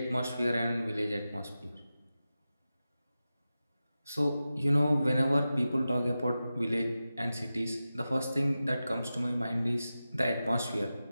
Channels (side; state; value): both; inverted; correlation -0.93